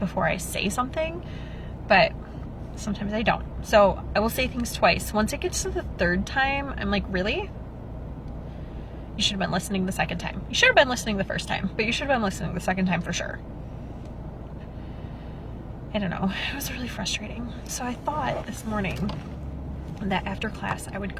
I say something, but sometimes I don't. So I will say things twice. Once it gets to the 3rd time, I'm like, really? You should have been listening the 2nd time. You should have been listening the 1st time, but you should have been listening the 2nd time for sure. I don't know. It was really frustrating. So I thought this morning that after class I would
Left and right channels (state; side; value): identical; both; correlation 1.00